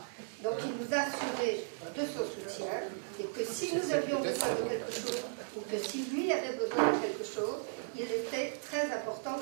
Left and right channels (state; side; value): silent; left; 54 dB below the other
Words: Donc il nous a assuré de son soutien et que si nous avions besoin de quelque chose ou que si lui avait besoin de quelque chose, il était très important